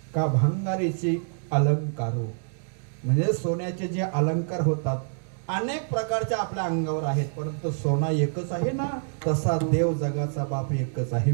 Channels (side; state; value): left; silent; digital silence